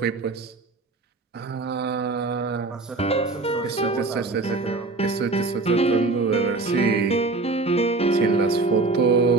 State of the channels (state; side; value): quieter; left; 3.5 dB